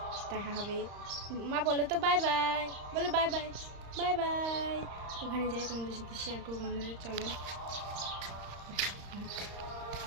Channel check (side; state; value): left; late; 35 ms